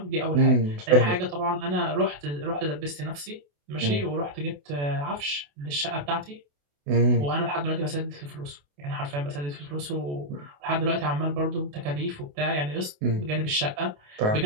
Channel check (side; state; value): left; late; 28 ms